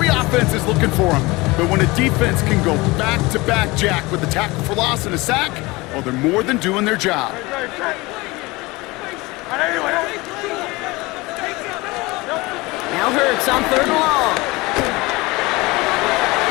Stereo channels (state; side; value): quieter; right; 22.7 dB